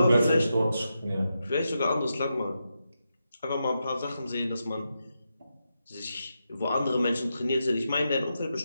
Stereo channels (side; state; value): both; inverted; correlation -0.86